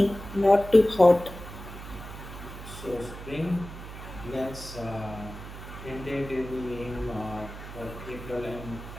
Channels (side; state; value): right; noise; hum, 12 dB below the sound